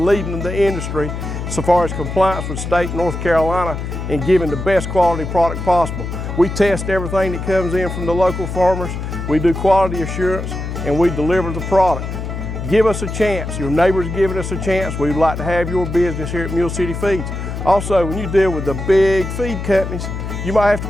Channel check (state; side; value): noise; left; hum, 6 dB below the sound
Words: leading the industry so far as compliance with state North Carolina and giving the best quality product possible. We test everything that comes in from the local farmers. We do quality assurance and we deliver the product. Give us a chance. Your neighbors giving us a chance. We'd like to have your business here at Mule City Feeds. Also, when you deal with the big feed companies, you might have to